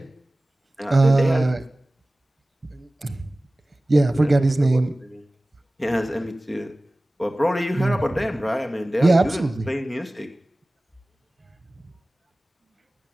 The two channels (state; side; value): normal; both; correlation 0.98